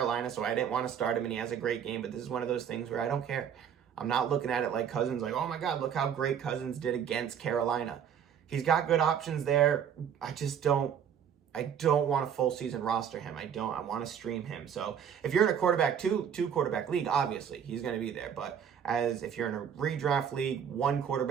so I didn't want to start him, and he has a great game, but this is one of those things where I don't care. I'm not looking at it like Cousins, like, oh my God, look how great Cousins did against Carolina. He's got good options there. I don't want a full season roster him. I want to stream him. So if you're in a quarterback, two quarterback league, obviously he's going to be there. But if you're in a redraft league, 1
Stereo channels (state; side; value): quieter; left; 8.3 dB